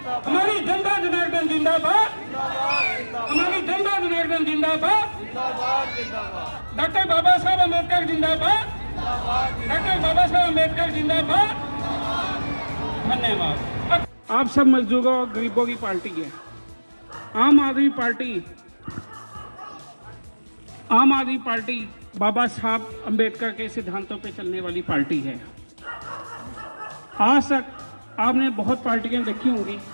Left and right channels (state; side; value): inverted; both; correlation -1.00